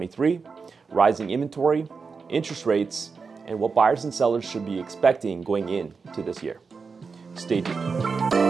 rising inventory, interest rates, and what buyers and sellers should be expecting going into this year. Stay tuned.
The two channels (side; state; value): left; quieter; 5.0 dB